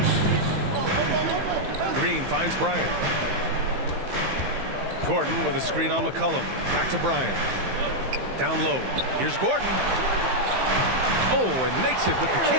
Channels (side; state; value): left; late; 15 ms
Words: Green finds Bryant. Gordon with a screen on McCollum. Back to Bryant. Down low. Here's Gordon. Oh, and makes it with the